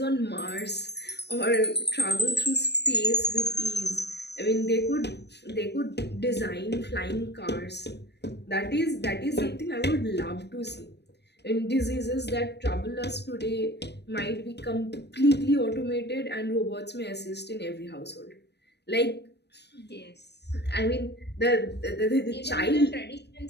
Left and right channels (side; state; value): right; late; 0.49 ms